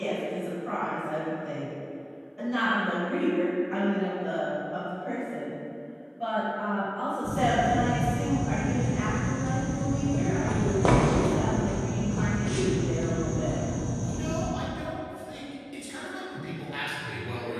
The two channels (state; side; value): identical; both; correlation 1.00